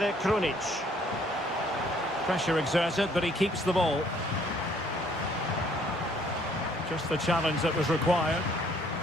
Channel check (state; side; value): normal; both; correlation 0.62